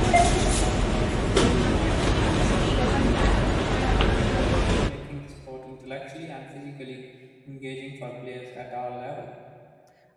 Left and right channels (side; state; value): both; identical; correlation 1.00